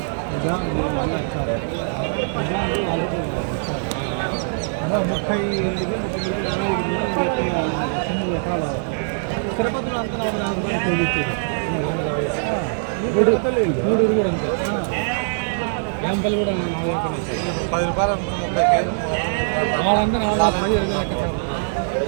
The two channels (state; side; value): silent; left; 64 dB below the other